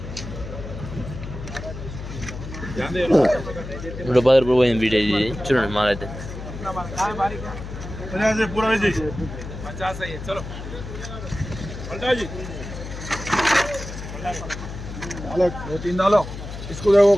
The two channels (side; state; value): left; noise; hum, 9 dB below the sound